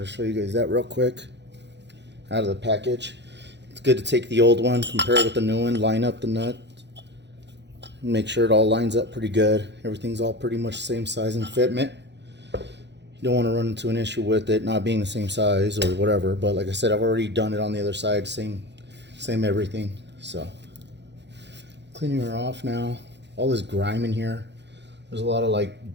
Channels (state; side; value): late; left; 0.51 ms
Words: to show you guys that real quick out of the package. It's good to take the old one, compare it with the new one, line up the nut, make sure it all lines up pretty good. Everything's all pretty much the same size and fitment. You don't want to run into an issue with it not being the same size or whatever, but like I said, I've already done it on the other side, same everything. So cleaning her off now. All this grime in here, there's a lot of like